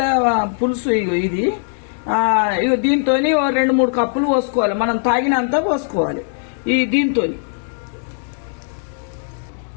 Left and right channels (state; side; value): silent; right; digital silence